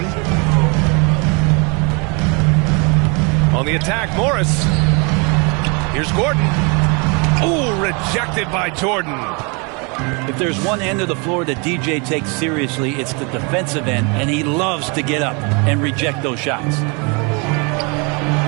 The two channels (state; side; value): quieter; left; 31.9 dB